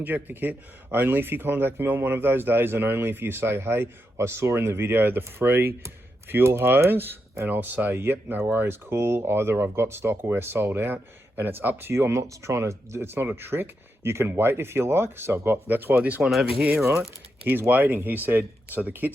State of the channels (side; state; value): both; normal; correlation 0.85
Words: kit, only if you contact me on one of those days, and only if you say, hey, I saw in the video the free fuel hose, and I'll say, yep, no worries, cool. Either I've got stock or we're sold out, and it's up to you. I'm not trying to, it's not a trick. You can wait if you like. So I've got, that's why this one over here, right? He's waiting. He said, so the